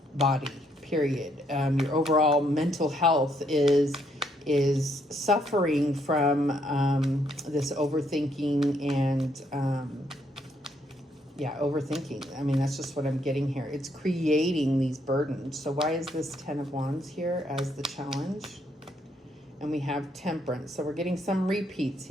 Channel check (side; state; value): both; normal; correlation 0.72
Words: body, period. Your overall mental health is suffering from this overthinking and overthinking. I mean, that's just what I'm getting here. It's creating these burdens. So why is this 10 of Wands here as the challenge? And we have Temperance. So we're getting some repeats